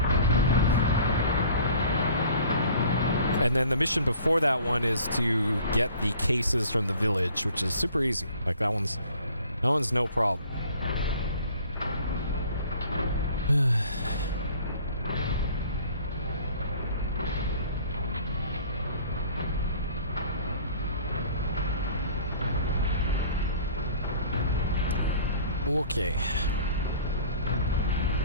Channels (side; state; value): both; inverted; correlation -0.50